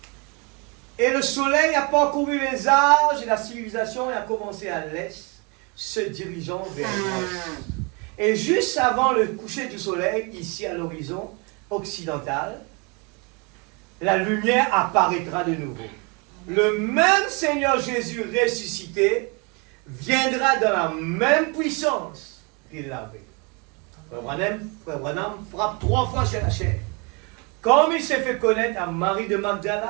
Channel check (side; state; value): left; quieter; 31.3 dB